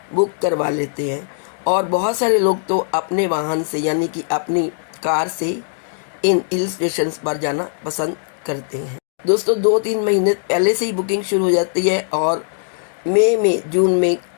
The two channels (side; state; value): right; silent; digital silence